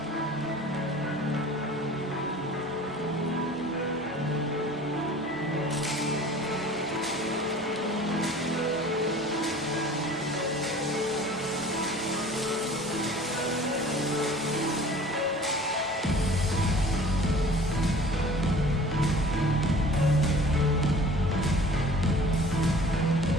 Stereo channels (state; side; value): normal; both; correlation 0.46